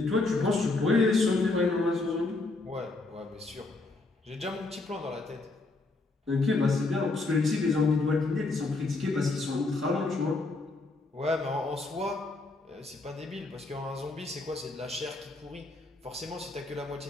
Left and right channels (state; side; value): quieter; right; 3.3 dB